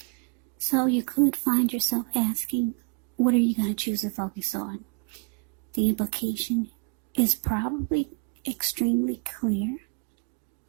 So you could find yourself asking, what are you going to choose to focus on? The implication is probably extremely clear.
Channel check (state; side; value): quieter; left; 34.8 dB